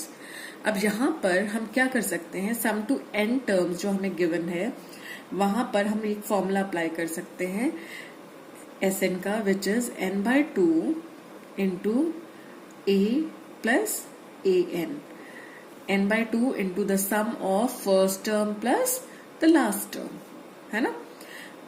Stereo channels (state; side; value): identical; both; correlation 1.00